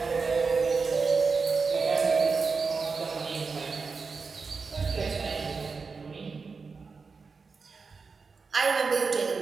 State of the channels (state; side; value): quieter; left; 4.8 dB